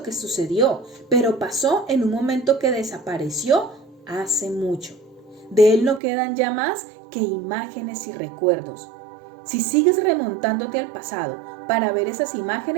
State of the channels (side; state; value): left; drops out; at 6.0 s